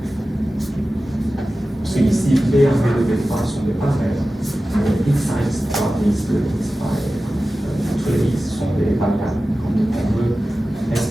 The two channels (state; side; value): normal; both; correlation 0.95